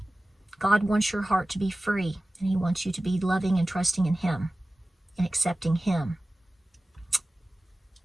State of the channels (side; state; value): both; normal; correlation 0.97